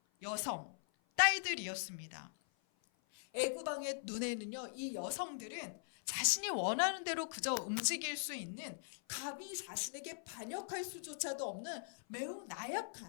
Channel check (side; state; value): right; silent; 50 dB below the other